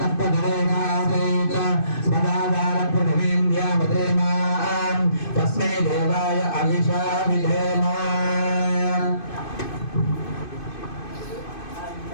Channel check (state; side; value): late; right; 2.5 ms